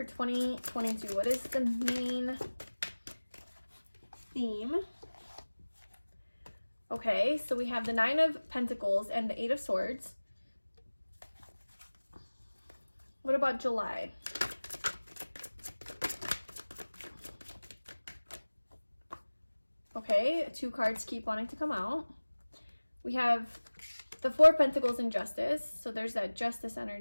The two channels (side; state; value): both; inverted; correlation -1.00